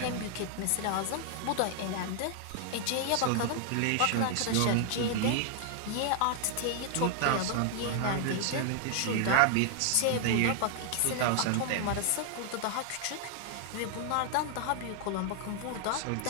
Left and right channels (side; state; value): both; different; correlation 0.00